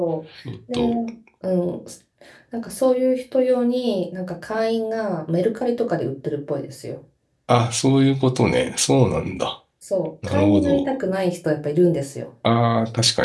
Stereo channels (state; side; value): identical; both; correlation 1.00